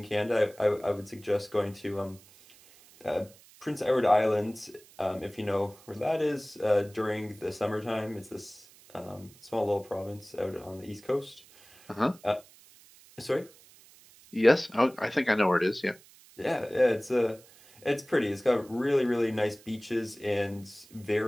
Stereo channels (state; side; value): noise; right; hiss, 25 dB below the sound